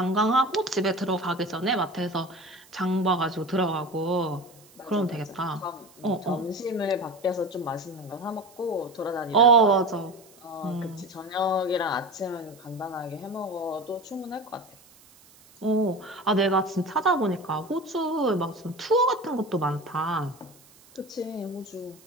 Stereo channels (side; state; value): right; noise; hiss, 26 dB below the sound